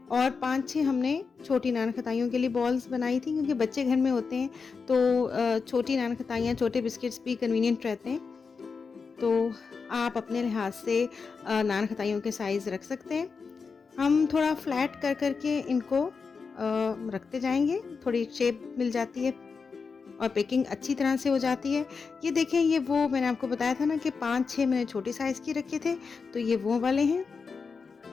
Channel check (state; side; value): quieter; right; 5.1 dB